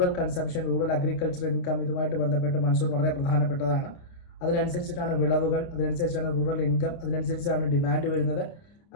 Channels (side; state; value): right; late; 29 ms